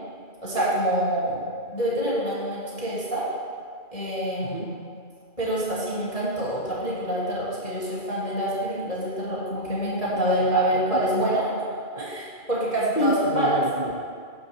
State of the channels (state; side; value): late; right; 2.4 ms